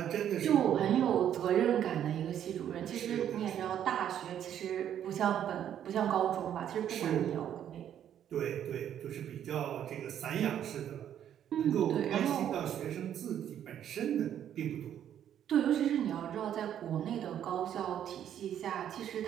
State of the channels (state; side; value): quieter; left; 10.1 dB